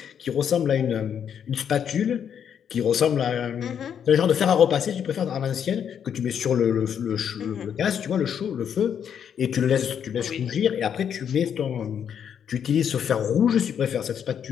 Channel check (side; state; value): right; quieter; 8.3 dB